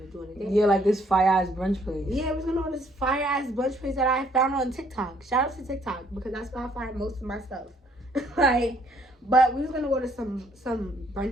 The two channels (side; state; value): both; normal; correlation 0.65